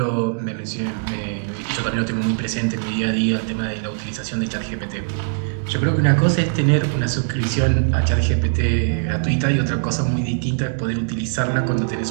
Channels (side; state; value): left; silent; digital silence